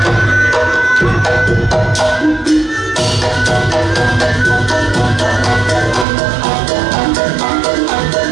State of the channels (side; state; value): left; drops out; at 6.1 s